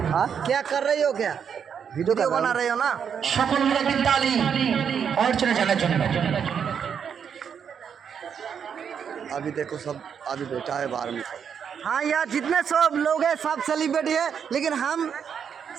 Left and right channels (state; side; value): quieter; left; 7.5 dB